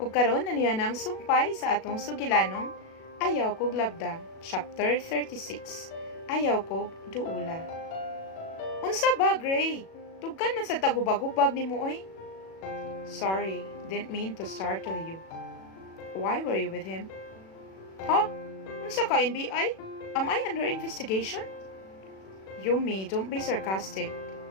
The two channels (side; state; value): right; late; 37 ms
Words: karon na niya ng sumpay sa atong sugilanong Ayaw Kog Labda, Chapter 36. Ayaw Kog Duola. Unsa ba, Gray? Tugkan man sa tagubag-ubag ni mo, oy. Sorry, didn't mean to startle you. Why were you with him? Huh? Unsa ka, NBI? Am I under investigation? Yumi, don't be sarcastic.